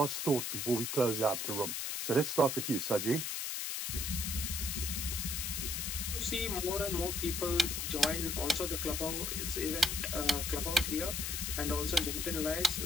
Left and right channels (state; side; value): noise; left; hiss, 2 dB below the sound